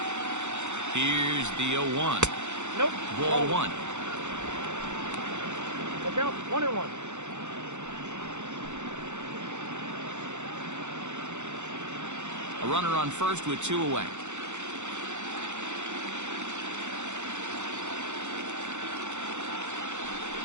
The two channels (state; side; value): late; left; 0.83 ms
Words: Here's the 0-1. Nope. Ball 1. Look out. 1-1. A runner on first with 2 away.